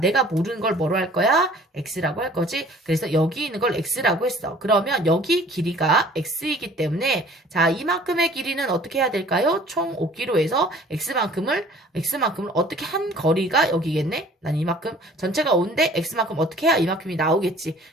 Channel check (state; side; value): normal; both; correlation 0.52